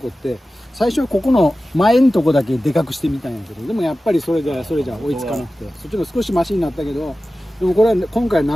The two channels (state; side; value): normal; both; correlation 0.95